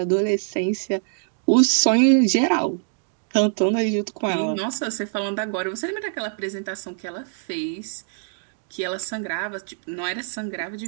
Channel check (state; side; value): silent; left; digital silence